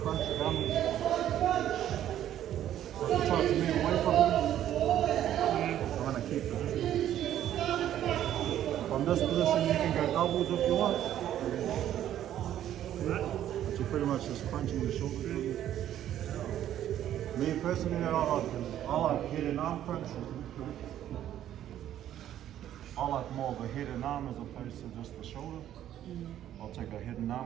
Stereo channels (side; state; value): left; quieter; 11.5 dB